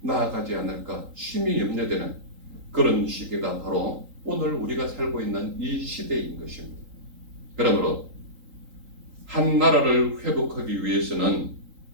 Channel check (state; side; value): late; left; 3.8 ms